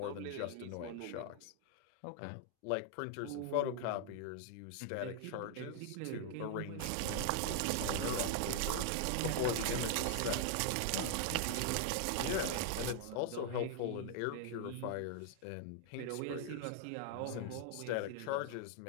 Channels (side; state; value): both; different; correlation 0.00